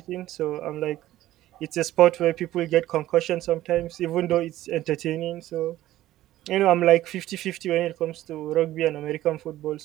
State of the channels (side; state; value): left; quieter; 14.7 dB